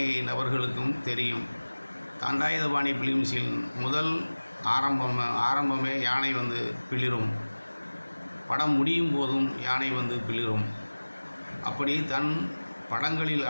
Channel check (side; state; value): both; inverted; correlation -1.00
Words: நபர்களுக்கும் தெரியும். தண்டாயுதபாணி பிலிம்ஸில் முதல் ஆரம்பமே யானை பிளிரும். படம் முடியும் போதும் யானை பிளிரும். அப்படி தன் படங்களில்